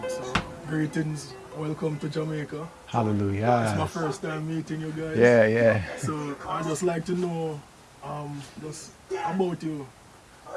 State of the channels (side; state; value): both; identical; correlation 1.00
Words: So, greetings, welcome to Jamaica. Hallelujah. It's my first time meeting you guys. Yeah. So I just like to know just about you,